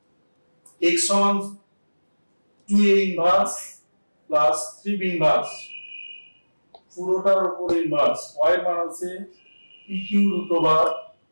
x সমান 2a inverse plus 3b inverse, পুরোটার উপর ইনভার্স। y এর মান আছে pq root over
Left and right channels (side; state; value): both; inverted; correlation -1.00